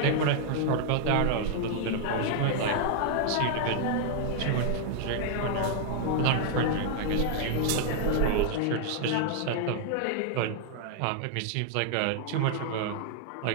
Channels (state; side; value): different; both; correlation 0.00